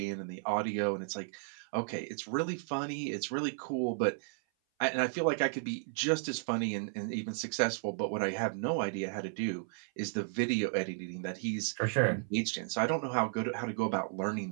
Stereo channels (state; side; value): silent; left; 55 dB below the other